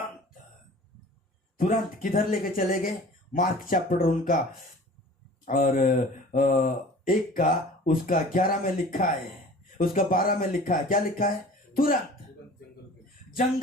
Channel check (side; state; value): both; normal; correlation 0.44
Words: तुरंत किधर लेके चले गए? मार्क चैप्टर उनका और 1 का उसका 11 में लिखा है, उसका 12 में लिखा है। क्या लिखा है? तुरंत